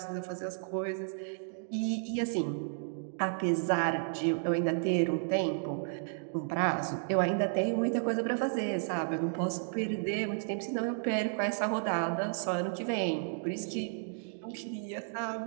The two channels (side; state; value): left; silent; digital silence